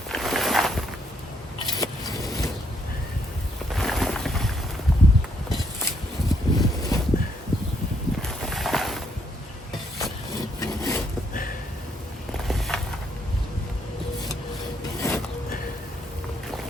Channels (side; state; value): both; normal; correlation 0.72